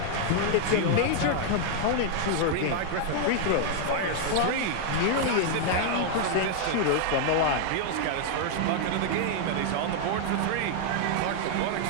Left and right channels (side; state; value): both; different; correlation 0.00